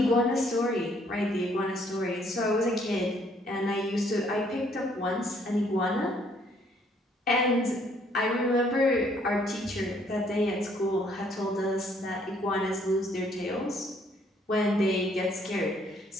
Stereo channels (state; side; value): normal; both; correlation 0.65